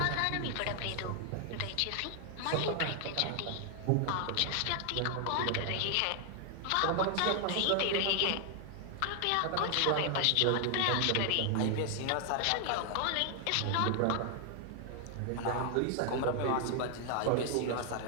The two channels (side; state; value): both; different; correlation 0.00